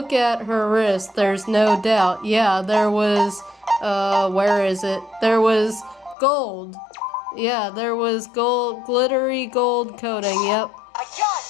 at her wrist, there's no doubt. Yeah, there was, where is it? There was gold. Yeah, there was gold, glittery gold coating, yep. I got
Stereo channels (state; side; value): drops out; right; at 6.2 s